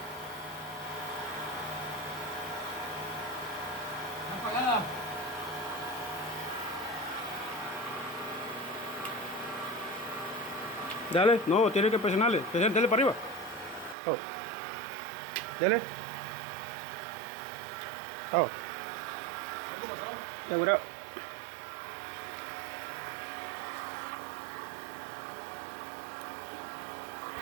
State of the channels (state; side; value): drops out; left; at 14.0 s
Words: Apagada. Dale. No, tiene que presionarle. Dale para arriba. Oh. Dale. Oh. ¿Cómo pasó? Ya, mira.